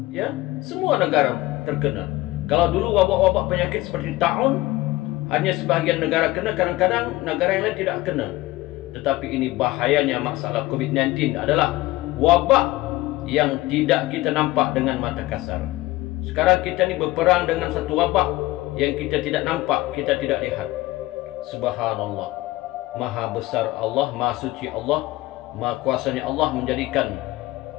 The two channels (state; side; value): quieter; right; 18.7 dB